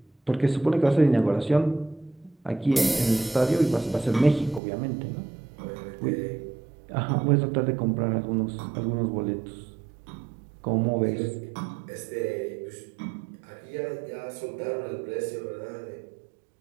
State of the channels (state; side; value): drops out; left; at 4.6 s